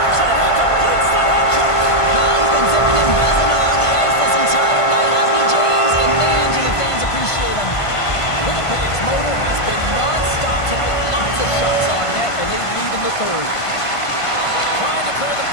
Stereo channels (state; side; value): late; right; 1.5 ms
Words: And he completes the head check. He's been zipping and buzzing along the ice this entire night, hasn't he, James? And man, do the fans appreciate him. Winnipeg's motor has been non-stop tonight. Lots of shots on net, and they lead in the third. Trying to clear the